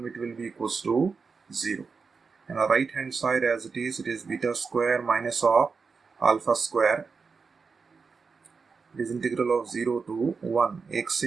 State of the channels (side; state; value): left; quieter; 5.0 dB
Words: will be equals to 0. And on the right hand side as it is beta square minus of alpha square. It is integral of 0 to 1 x